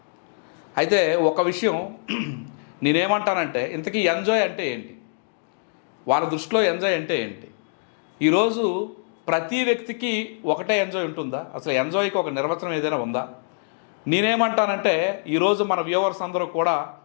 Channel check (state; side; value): silent; right; digital silence